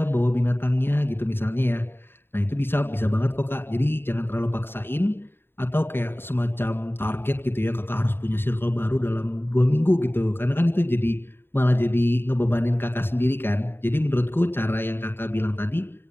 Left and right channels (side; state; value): right; late; 0.11 ms